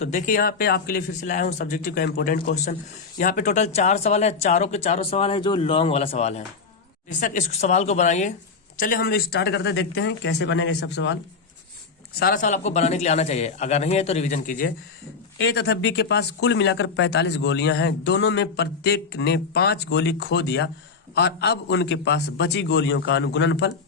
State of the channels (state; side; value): quieter; right; 4.9 dB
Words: देखिए यहाँ पे आपके लिए फिर से लाया हूं सब्जेक्टिव का इंपॉर्टेंट क्वेश्चन। यहाँ पे टोटल 4 सवाल है, चारों के चारों सवाल है जो लॉन्ग वाला सवाल है। बेशक इस सवाल को बनाइए। चलिए हम स्टार्ट करते देखते हैं कैसे बनेंगे सब सवाल। सारा सवाल आपको बनाने के लिए आना चाहिए, अगर नहीं है तो रिविजन कीजिए। ए तथा बी के पास कुल मिलाकर 45 गोलियां हैं। दोनों में प्रत्येक ने 5 गोली खो दिया और अब उनके पास बची गोलियों का अनुगुणनफल